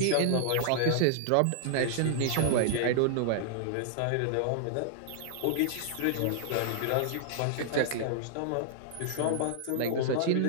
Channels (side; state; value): both; different; correlation -0.01